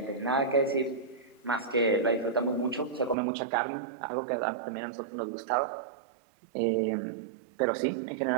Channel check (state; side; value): drops out; left; at 3.2 s